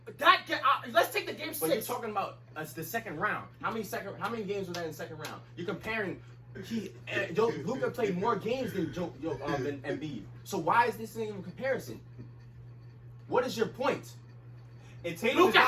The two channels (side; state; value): both; identical; correlation 1.00